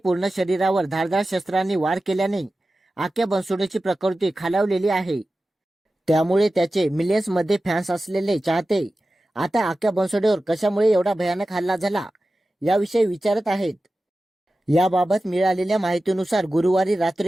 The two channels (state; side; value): normal; both; correlation 0.95